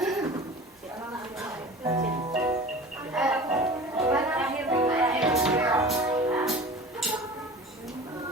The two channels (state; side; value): normal; both; correlation 0.39